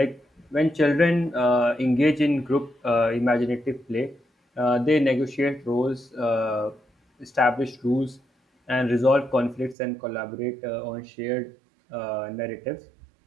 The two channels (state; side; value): drops out; left; at 9.8 s